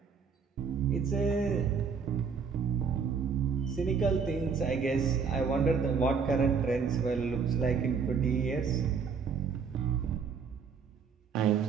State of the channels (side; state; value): left; quieter; 5.9 dB